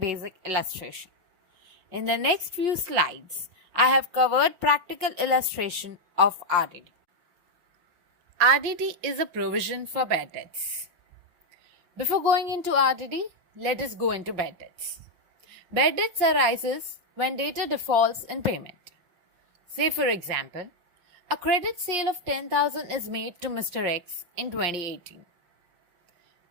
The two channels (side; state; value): left; late; 5.6 ms